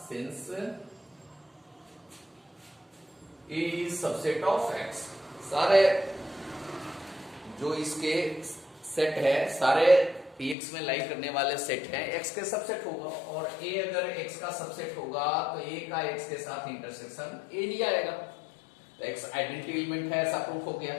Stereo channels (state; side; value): drops out; right; at 10.6 s